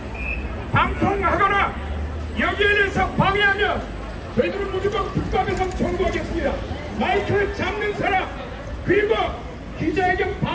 방송하거나 여기에 대해서 방해하면 저희들은 무조건 국가배상 청구하겠습니다. 마이크를 잡는 사람 그리고 기자회견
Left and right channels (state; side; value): identical; both; correlation 1.00